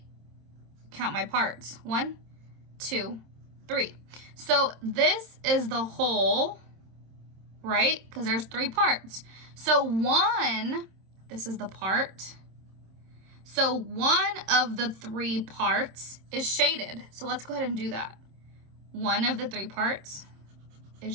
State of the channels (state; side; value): late; left; 26 ms